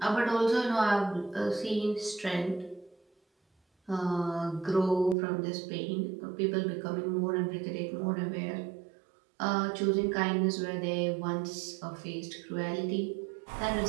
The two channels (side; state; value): left; drops out; at 5.2 s